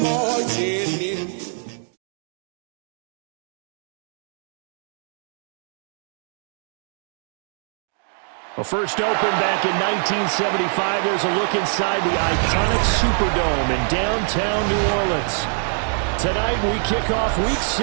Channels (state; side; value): silent; left; 59 dB below the other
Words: marching in. Well, first opened back in 1975, there's a look inside the iconic Superdome in downtown New Orleans. Tonight we kick off Week